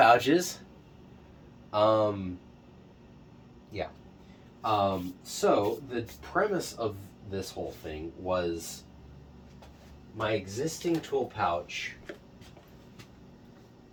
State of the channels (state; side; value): identical; both; correlation 1.00